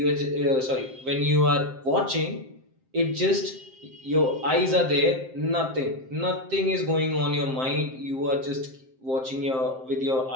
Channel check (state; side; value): late; left; 7.6 ms